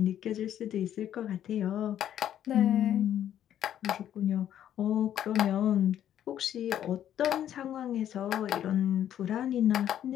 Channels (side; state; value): right; quieter; 10.8 dB